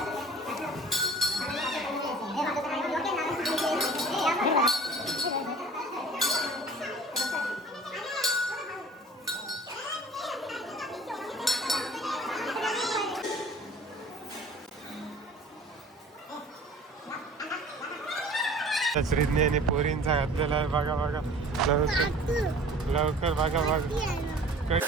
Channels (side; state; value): both; normal; correlation 0.46